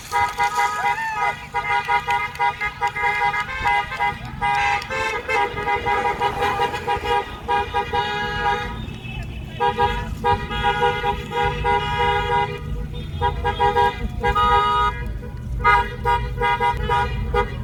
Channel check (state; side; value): identical; both; correlation 1.00